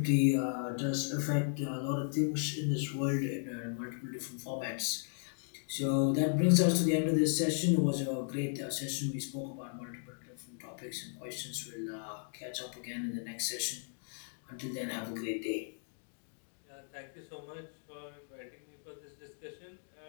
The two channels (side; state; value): right; silent; digital silence